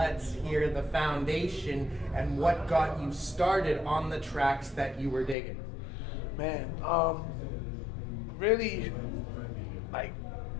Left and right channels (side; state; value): right; drops out; at 5.4 s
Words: hear the foundation and what got you started on the tracks that you were digging. Man, really, like,